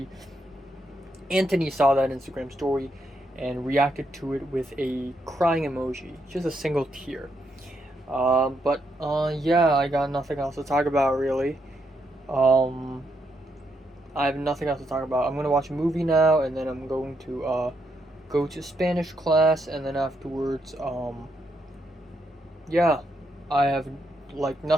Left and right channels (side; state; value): both; normal; correlation 0.79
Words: Anthony saw that Instagram story and reacted to it with a crying emoji, just a single tear. Yeah, I got nothing else to talk about really. Um, I have nothing else to talk about. I'm gonna watch a movie now, and then I'm going to go to Spanish class, and then afterwards, yeah, I have like